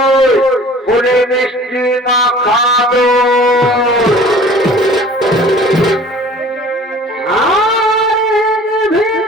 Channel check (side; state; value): both; normal; correlation 0.47